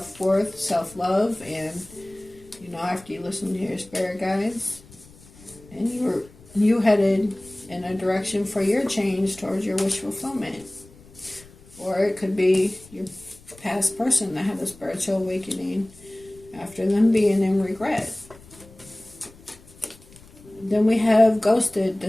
self-love, and after you listen to your spirit guides, and you headed in a direction for your change towards your wish fulfillment. Or it could be your past person that had a spiritual awakening after them being in regret. Then we have ghosted,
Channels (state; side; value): noise; left; rumble, 23 dB below the sound